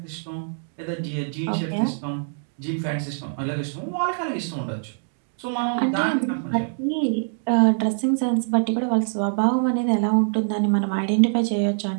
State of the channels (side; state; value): left; silent; digital silence